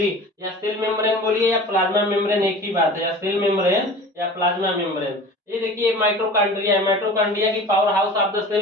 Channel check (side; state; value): both; normal; correlation 0.39